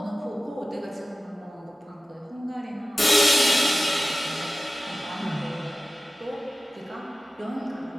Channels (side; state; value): both; normal; correlation 0.96